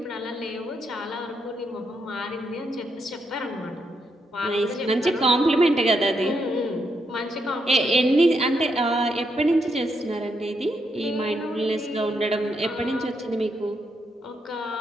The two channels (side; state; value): both; normal; correlation 0.80